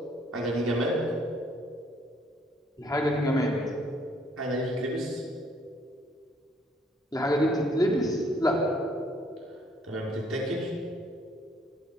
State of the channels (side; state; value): both; normal; correlation 0.64